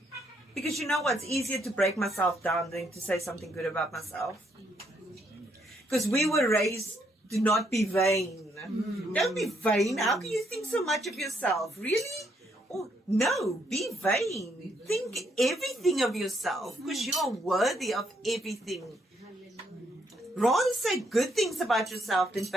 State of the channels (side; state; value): both; normal; correlation 0.73